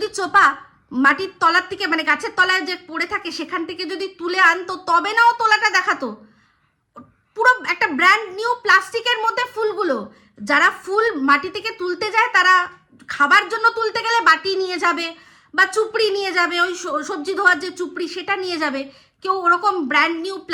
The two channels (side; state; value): both; identical; correlation 1.00